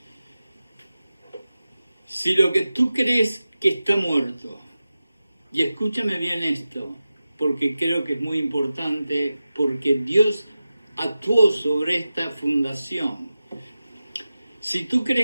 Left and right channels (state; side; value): inverted; both; correlation -0.94